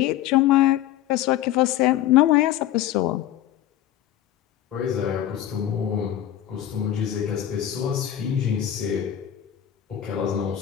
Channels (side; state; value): right; quieter; 11.8 dB